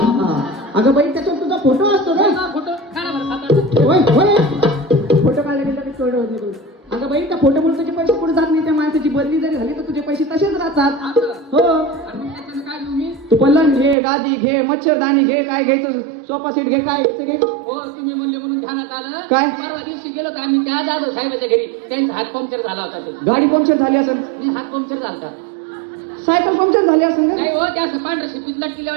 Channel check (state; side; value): drops out; left; at 14.0 s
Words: अगं बाई त्याच्यावर तुझा फोटो असतो ना. फोटो काढा बरं 7-8. होय होय फोटो काढले की थोडं होत नाही. अगं बाई त्या फोटोमुळे तुझे पैसे पुढे जात नाही. त्या माणसाची बदली जरी झाली तर तुझे पैसे तसेच राहतात. हो आणि मग त्याच्यानं काय घेऊ मी? तू पलंग घे, गादी घे, मच्छरदाणी घे, काय घ्यायचं सोफा सेट घे, काय घ्यायचं घे. हो तुम्ही म्हणले म्हणून ध्यानात आलं. काय? परवा दिवशी गेलो तर आम्ही त्या जाधव साहेबाच्या घरी. त्यांचा हात पंक्चर झाला होता. ते गाडी पंक्चर झाली असेल, मी हात पंक्चर झाला. सायकल पंक्चर झाली असेल ना? नाही हो ते असं पांढरं शिपीत लटकी